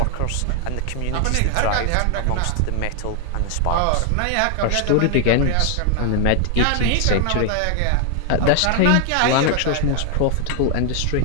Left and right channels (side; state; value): both; different; correlation 0.00